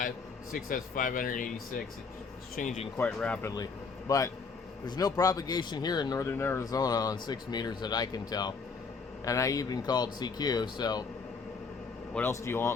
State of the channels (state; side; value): quieter; right; 4.9 dB